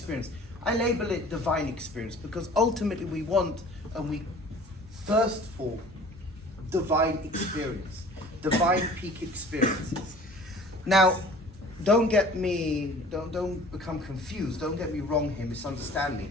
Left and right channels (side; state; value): both; normal; correlation 0.47